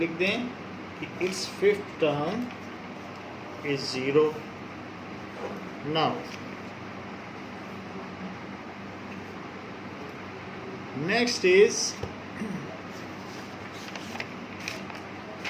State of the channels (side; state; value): both; identical; correlation 1.00